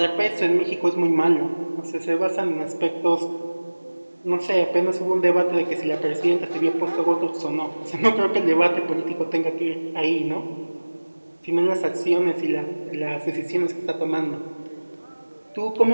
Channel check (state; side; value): inverted; both; correlation -1.00